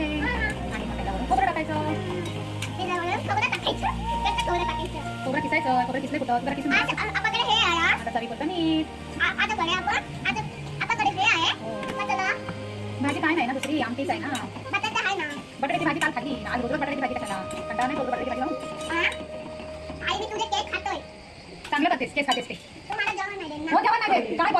आणि मग त्याच्यावरून खोबरं टाकायचं. खोबरं किसायचं. खोबरं किसले कुठं? खोबरं किसून आता चवीपुरतं मीठ. भाजी काय नाही ना दुसरी आमटीच आहे ना. बटाट्याची भाजी काल खाल्ली. आज रोज बटाट्याची भाजी कशाला? कंटाळा नाही रोज बटाट्याची भाजी लावून. चांगलं करतेस. केस खातेस ते. हो जेवण नाही देत. काय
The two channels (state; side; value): identical; both; correlation 1.00